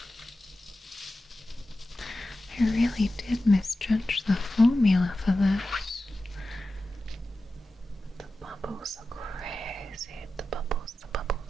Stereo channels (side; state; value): both; normal; correlation 0.93